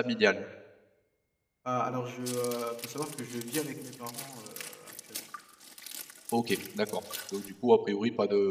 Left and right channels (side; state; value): both; identical; correlation 1.00